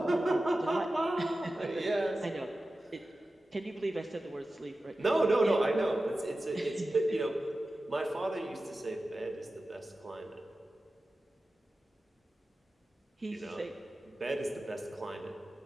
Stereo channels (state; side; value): normal; both; correlation 0.94